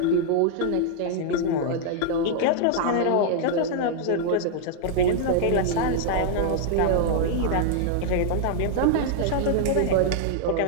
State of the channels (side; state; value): both; different; correlation -0.01